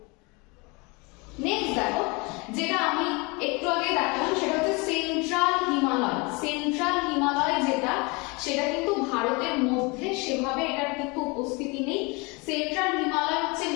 নেক্সট দেখো, যেটা আমি একটু আগে দেখালাম সেটা হচ্ছে সেন্ট্রাল হিমালয়। সেন্ট্রাল হিমালয় যেটা, সেটা কিন্তু ভারতের মধ্যে সেভাবে এটার কিন্তু উপস্থিতি নেই। সেন্ট্রাল হিমালয় হচ্ছে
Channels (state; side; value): quieter; right; 27.8 dB